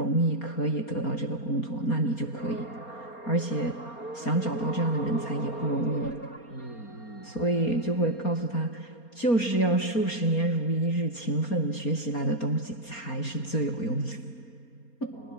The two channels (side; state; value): right; late; 4.3 ms